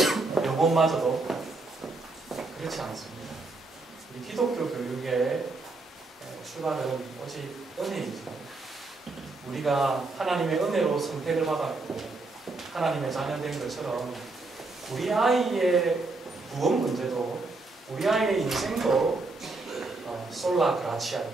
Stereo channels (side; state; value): left; quieter; 3.4 dB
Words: 영혼마저도 그렇지 않습니다. 우리 기독교 교육의 출발은 오직 은혜이죠. 우리가 하나님의 은혜로 선택을 받았고 하나님의 자녀된 것처럼 우리 아이의 구원 문제도 우리 아이의 인생도 솔라